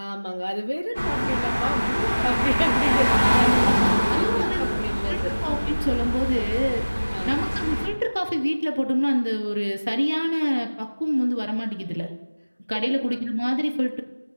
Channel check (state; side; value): inverted; both; correlation -1.00